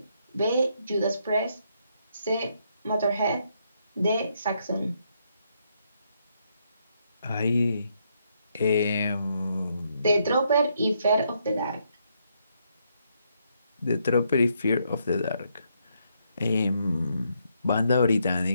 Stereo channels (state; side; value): inverted; both; correlation -0.76